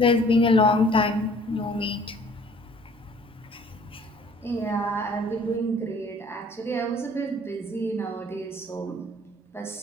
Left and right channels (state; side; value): normal; both; correlation 0.55